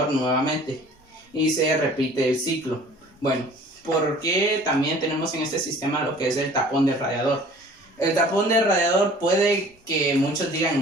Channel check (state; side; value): normal; both; correlation 0.49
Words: nuevamente, y se repite el ciclo. Bueno, ¿por qué también tenemos en este sistema lo que es el tapón del radiador? El tapón del radiador, puede que muchos digan,